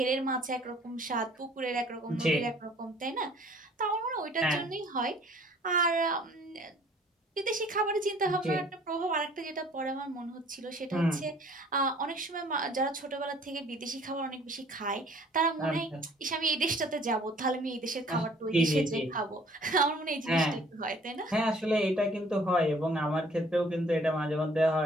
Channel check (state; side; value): normal; both; correlation 0.55